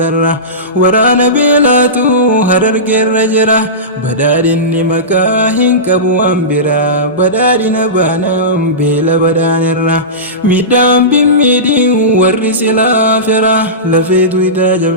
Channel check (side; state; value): both; normal; correlation -0.19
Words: ورانا بيلاتو هررقي الرجرا بدارني مكاهن كبو أمبرا بدارنا بانام بيلا بدانرا ميدام بميدين ورس الآخرة لفيدو إذا